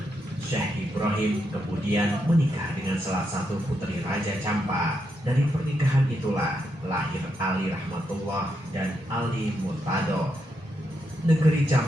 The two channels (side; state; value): both; normal; correlation 0.82